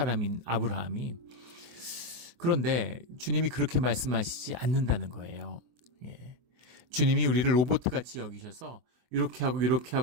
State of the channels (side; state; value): left; late; 24 ms